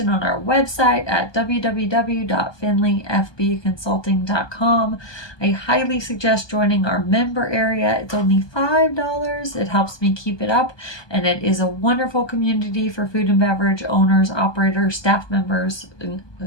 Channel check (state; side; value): late; right; 1.2 ms